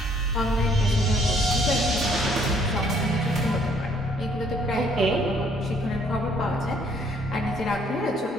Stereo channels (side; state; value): both; normal; correlation 0.63